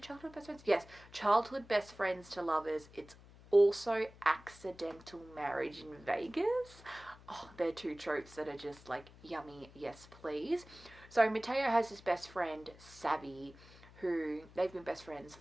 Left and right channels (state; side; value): noise; left; hum, 21 dB below the sound